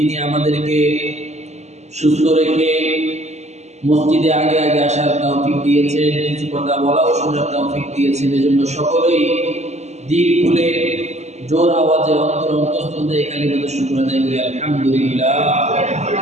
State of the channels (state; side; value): late; left; 0.33 ms